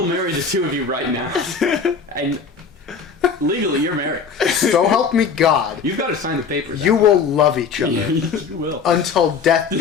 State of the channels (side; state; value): right; quieter; 5.7 dB